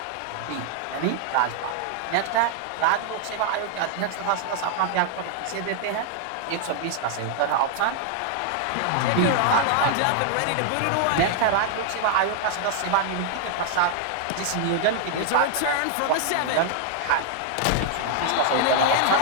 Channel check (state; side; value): different; both; correlation 0.00